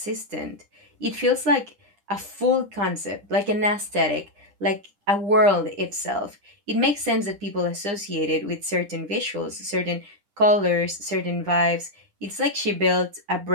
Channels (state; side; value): late; left; 9.9 ms